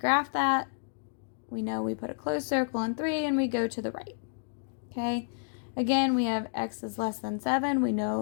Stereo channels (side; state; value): right; silent; digital silence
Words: that. We know we put a closed circle on 3 and we go to the right. Okay, again, we have x is less than 7. We